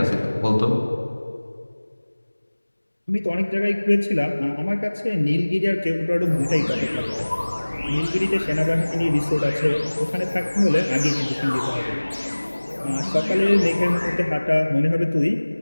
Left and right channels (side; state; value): both; inverted; correlation -1.00